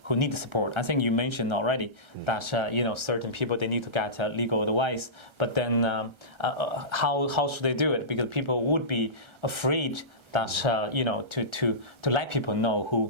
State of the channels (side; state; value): left; late; 1.3 ms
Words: need the support. I think you mentioned already that certain people, they need to get legal advice. But then how should they do it? Because people would be afraid that to let people know